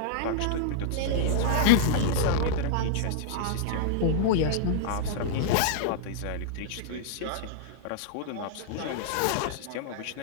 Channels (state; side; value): different; both; correlation -0.01